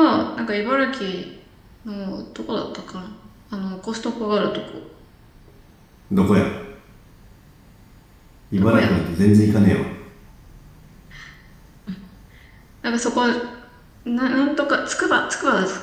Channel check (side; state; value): both; identical; correlation 1.00